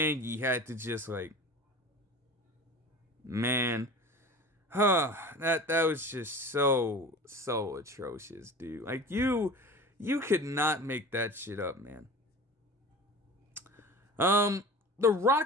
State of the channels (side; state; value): both; normal; correlation 0.36